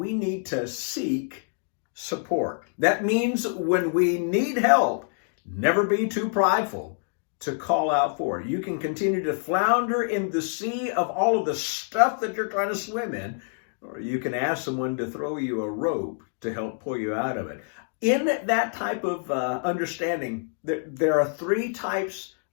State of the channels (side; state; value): right; silent; 61 dB below the other